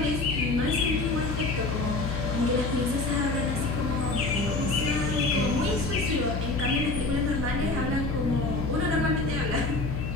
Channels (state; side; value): noise; left; hum, 3 dB below the sound